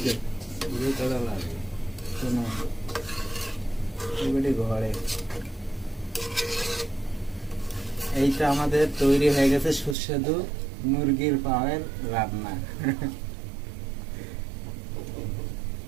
সিদ্ধ করা লাগে শোনো এবারে ঘরে এইটা আমাদের তৈরি হয়ে গেছে সুস্বাদু মুরগির পায়ের রান্না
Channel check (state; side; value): drops out; left; at 10.0 s